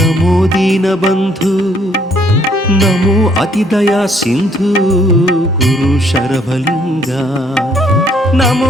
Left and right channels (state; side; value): normal; both; correlation 0.65